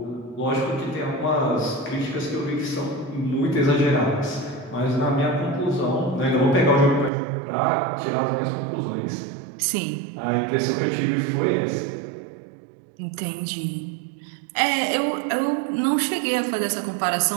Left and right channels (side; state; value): left; drops out; at 7.1 s